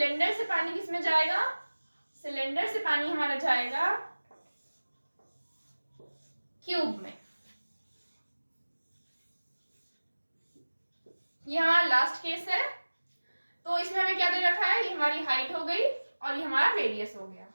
से पानी किस में जाएगा, सिलेंडर से पानी हमारा जाएगा क्यूब में। ये हमारा लास्ट केस है। तो इसमें हमें क्या दे रखा है, ये हमारी हाइट हो गई और ये हमारा रेडियस हो गया।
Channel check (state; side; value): inverted; both; correlation -1.00